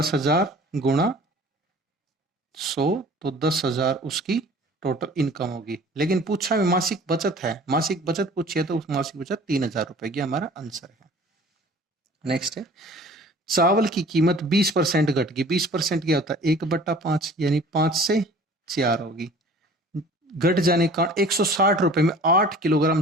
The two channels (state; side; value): normal; both; correlation 0.47